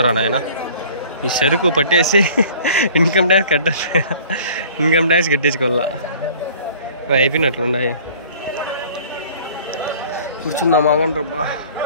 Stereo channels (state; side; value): inverted; both; correlation -0.49